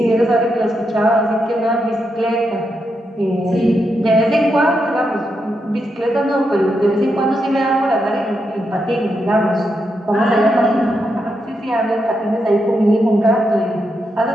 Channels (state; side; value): normal; both; correlation 0.83